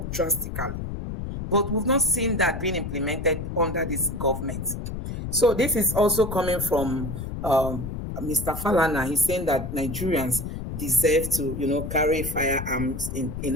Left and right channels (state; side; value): noise; left; rumble, 6 dB below the sound